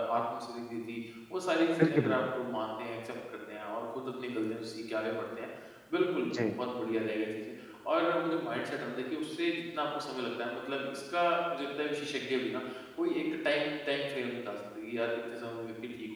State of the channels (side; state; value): both; identical; correlation 1.00